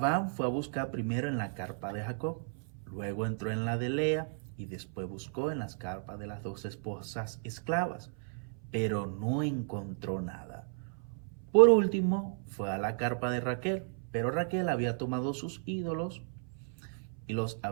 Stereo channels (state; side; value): silent; left; 55 dB below the other